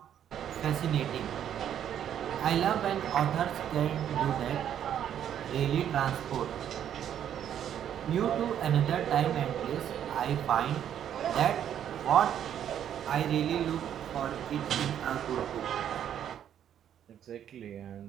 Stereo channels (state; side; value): quieter; left; 9.8 dB